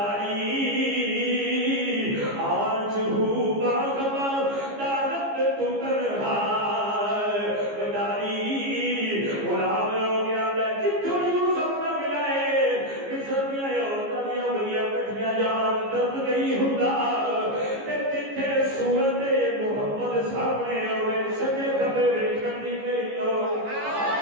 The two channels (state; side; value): late; left; 15 ms